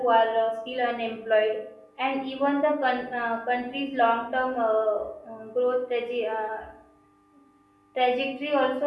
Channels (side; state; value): both; identical; correlation 1.00